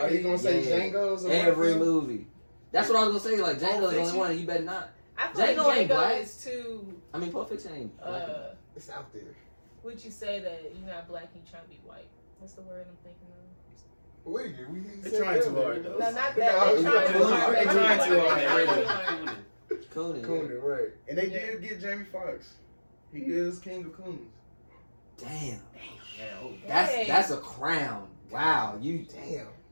you gonna say Yeah. Django's? or Every whatever? movie. That's what I was gonna say. Like Django's the only Fiction? one, and you better not. I feel like Django ain't Django black. is too. I mean, Pulp Fiction ain't black. It's out there. Would you say that you're not black and you trying to be white? What's the word I'm thinking of? They're trying too hard though. No, not that. No, They're trying too hard. They're trying too hard. Coonan. Coonan, right? And they Yeah. did get Jamie Foxx. He is king of coons. Damn. Yeah, oh, That's a crown. Wow. You. Damn.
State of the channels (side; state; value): both; inverted; correlation -1.00